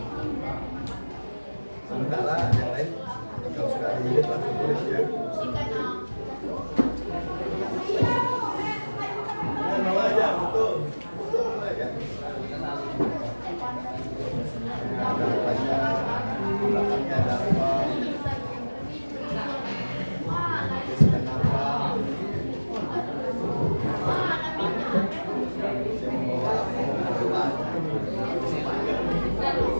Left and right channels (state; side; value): inverted; both; correlation -1.00